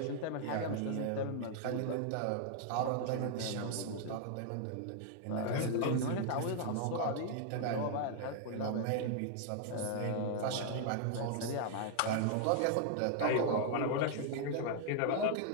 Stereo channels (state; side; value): different; both; correlation 0.00